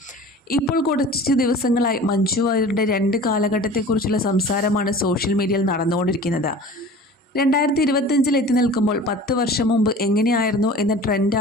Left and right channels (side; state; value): both; normal; correlation 0.41